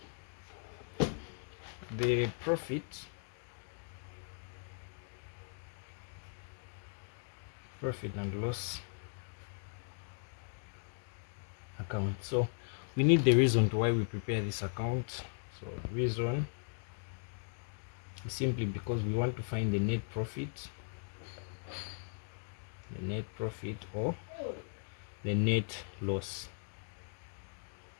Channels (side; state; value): right; silent; digital silence